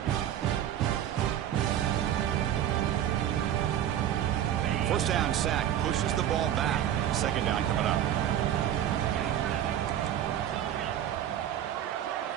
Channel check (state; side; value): quieter; left; 10.9 dB